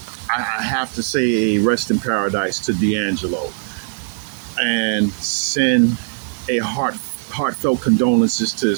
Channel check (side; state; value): left; silent; digital silence